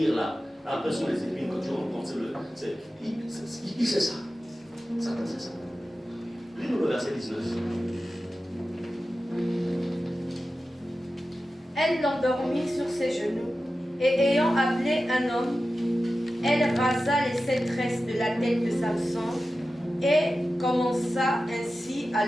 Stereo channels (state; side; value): normal; both; correlation 0.93